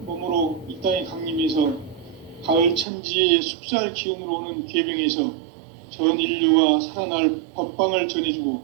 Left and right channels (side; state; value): left; drops out; at 2.9 s